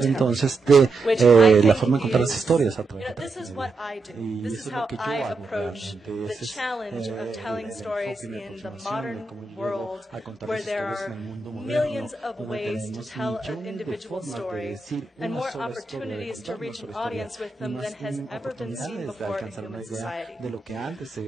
storytelling, entonces de which I la think forma de contar las is, historias a través de this is Transmedia. what I do. Y This eso is es lo how que yo I hago approach realmente. the Ese es challenge of telling el stories enfoque y mi in the aproximación modern de cómo llego world, a contar where las there historias en are el mundo moderno, millions of donde ways to tenemos tell an millones de individual formas de story decir and una more sola historia, de opportunities to contar una reach an sola historia, audience with y them más than has ever been seen oportunidades de before in alcanzar una human idea society. de lo que antes se The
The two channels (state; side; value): quieter; left; 3.8 dB